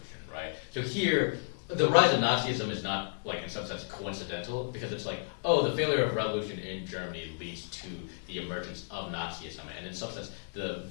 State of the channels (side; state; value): right; silent; digital silence